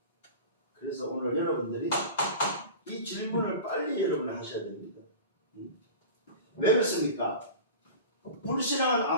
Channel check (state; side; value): inverted; both; correlation -0.34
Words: 그래서 오늘 여러분들이 이 질문을 빨리 여러분이 하셔야 됩니다. 왜 그렇습니까? 불신앙은